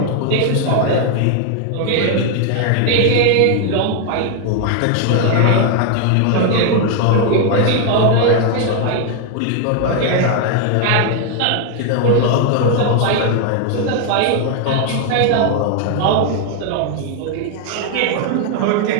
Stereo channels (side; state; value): both; different; correlation 0.00